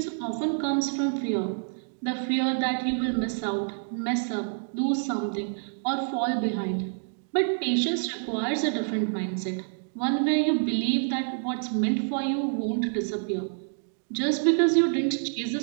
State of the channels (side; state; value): left; silent; digital silence